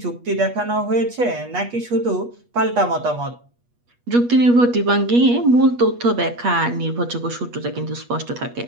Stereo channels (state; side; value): late; left; 8.3 ms